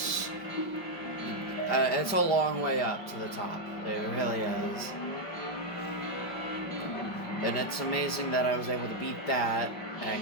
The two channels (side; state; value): right; late; 5.0 ms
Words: It's a long way up to the top. It really is. And it's amazing that I was able to beat that